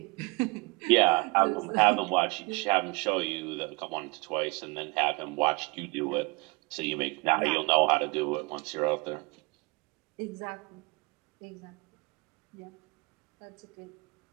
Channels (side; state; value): left; quieter; 27.7 dB